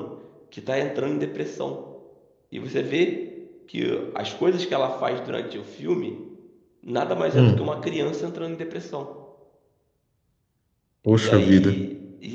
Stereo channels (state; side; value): identical; both; correlation 1.00